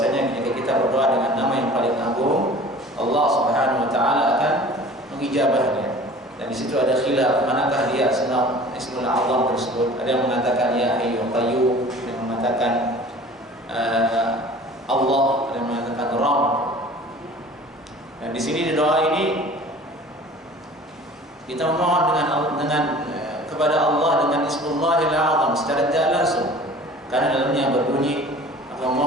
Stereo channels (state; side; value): normal; both; correlation 0.45